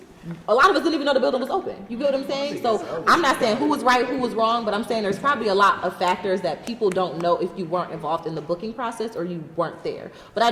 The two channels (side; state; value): both; identical; correlation 1.00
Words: a lot of us didn't even know the building was open. You get what I'm saying? So I'm not saying who was right, who was wrong, but I'm saying there's probably a lot of factors that people don't know if you weren't involved in the booking process or you weren't there. But I